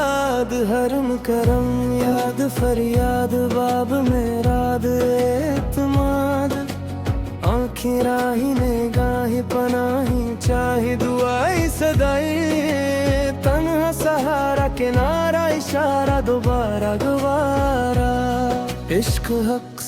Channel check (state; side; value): identical; both; correlation 1.00